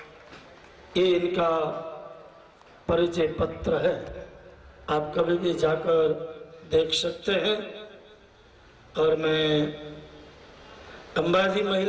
ये इनका परिचय पत्र है, आप कभी भी जाकर देख सकते हैं। और मैं अंबाजी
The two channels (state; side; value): identical; both; correlation 1.00